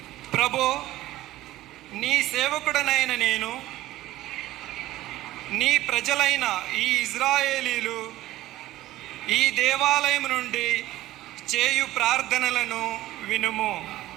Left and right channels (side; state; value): left; quieter; 15.9 dB